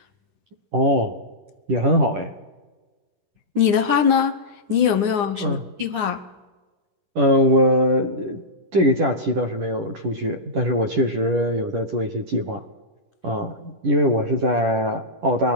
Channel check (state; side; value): late; left; 9.8 ms